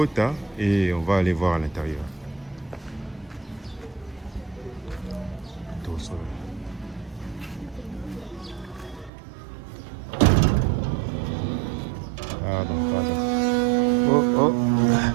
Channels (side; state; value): left; drops out; at 9.1 s